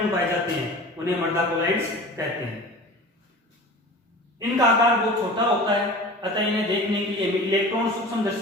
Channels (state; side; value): normal; both; correlation 0.38